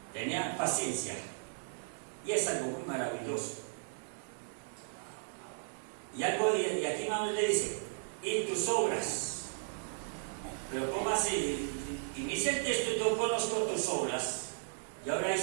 tenía paciencia. Y es algo muy maravilloso. Y algo de aquí Manuel le dice, y tus obras. Pero ¿cómo así? Inicia el texto y yo conozco tus obras. Y ahora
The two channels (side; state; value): left; silent; digital silence